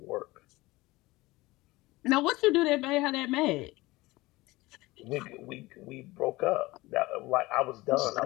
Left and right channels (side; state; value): right; quieter; 20.3 dB